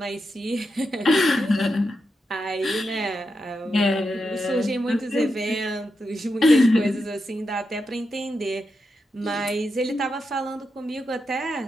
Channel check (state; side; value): normal; both; correlation 0.86